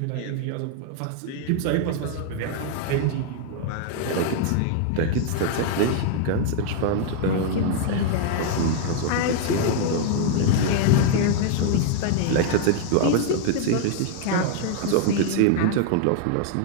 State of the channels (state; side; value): different; both; correlation 0.00